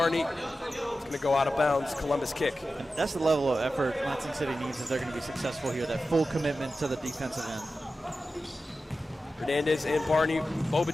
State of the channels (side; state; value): both; normal; correlation 0.93